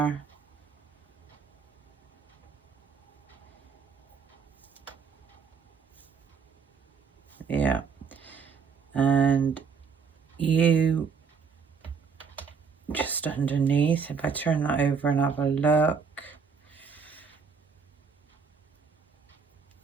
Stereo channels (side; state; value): left; quieter; 5.8 dB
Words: yeah, and you just underneath. If I turn that over and have a look,